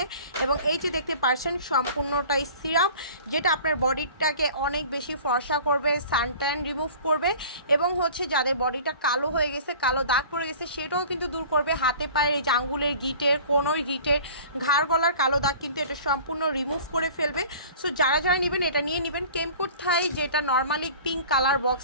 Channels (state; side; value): inverted; both; correlation -0.44